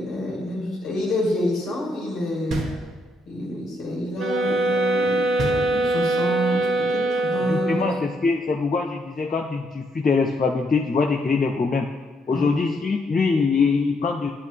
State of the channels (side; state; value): both; normal; correlation 0.75